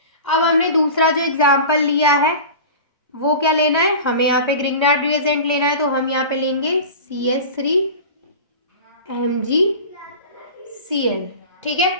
अब हमने दूसरा जो एग्जाम्पल लिया है वो क्या लेना है, हमें यहाँ पे ग्रिग्नार्ड रिएजेंट लेना है। तो हम यहाँ पे लेंगे CH3MgCl, ठीक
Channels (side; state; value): both; inverted; correlation -0.34